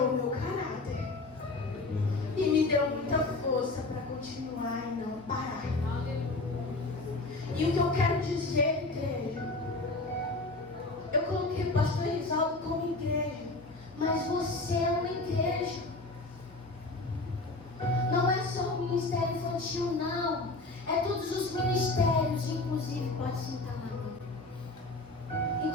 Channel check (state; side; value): quieter; right; 3.1 dB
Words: o meu caráter. E me deu muita força para continuar e não parar. E o que eu quero dizer, igreja, eu coloquei o pastor Risaldo como igreja, mas você é uma igreja. Não é só o ministério infantil, não. É todos os ministérios, inclusive, pode sentar lá.